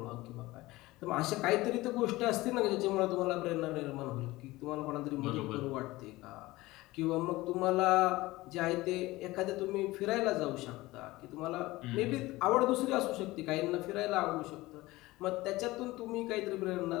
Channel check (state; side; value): quieter; right; 19.3 dB